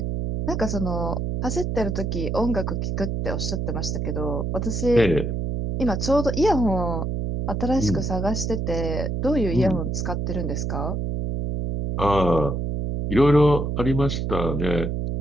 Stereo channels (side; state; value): right; noise; hum, 1 dB below the sound